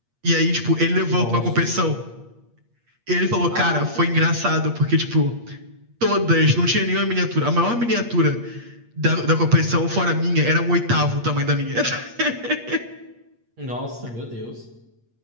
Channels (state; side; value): late; left; 8.5 ms